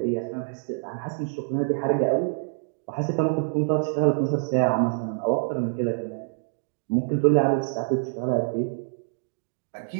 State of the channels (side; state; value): left; silent; digital silence